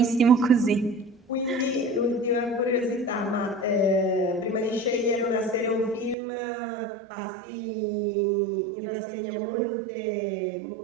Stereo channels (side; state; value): left; drops out; at 6.2 s